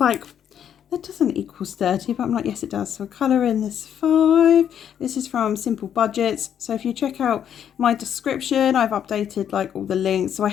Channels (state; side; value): quieter; right; 9.2 dB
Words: That doesn't equal 30, but I'm like, yes, it does. So colour in this 5. This is from Simple Budgets. So if you check out my description, I've updated like all the links. So I